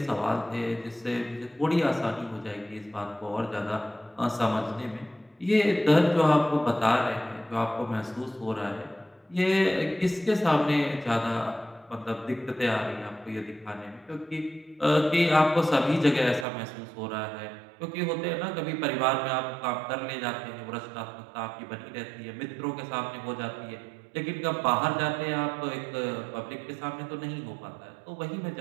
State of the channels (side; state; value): left; drops out; at 16.4 s